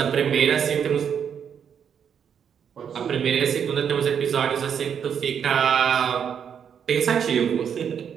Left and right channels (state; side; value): quieter; left; 7.8 dB